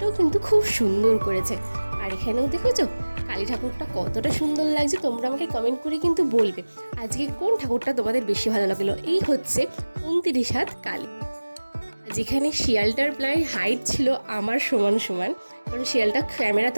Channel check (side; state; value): both; inverted; correlation -1.00